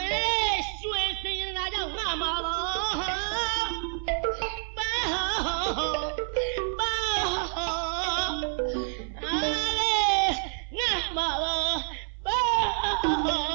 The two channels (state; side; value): silent; left; 56 dB below the other